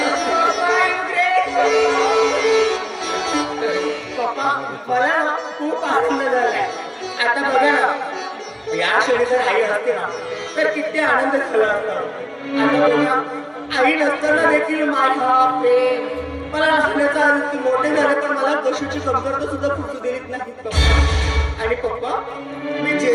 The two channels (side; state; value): both; identical; correlation 1.00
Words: पप्पा, मला ना खूप आनंद झालाय. आता बघा ना, या क्षणी जर आई असते ना तर किती आनंद झाला असता. आता बघा, आई नसताना देखील माझा प्रेम मला लहानाचा आनंद, मोठे झाले पण मला कशाची कमतरता सुद्धा फुटू देत नाही पप्पा. आणि पप्पा, मी